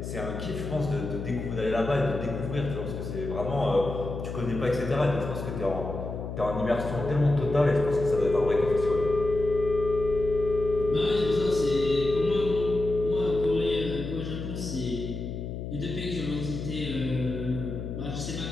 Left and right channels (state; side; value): noise; left; hum, 6 dB below the sound